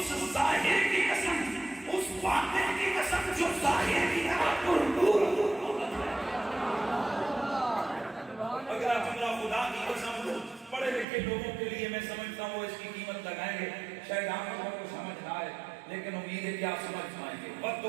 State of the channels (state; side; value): drops out; left; at 11.1 s